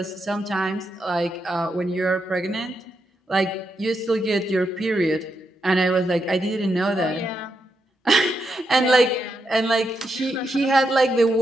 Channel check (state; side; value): normal; both; correlation 0.83